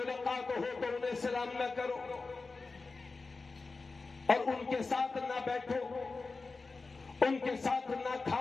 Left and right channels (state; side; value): quieter; right; 4.0 dB